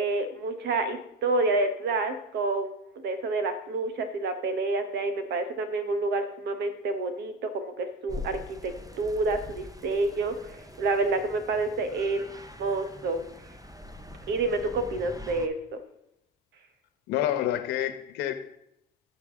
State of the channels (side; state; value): both; normal; correlation 0.20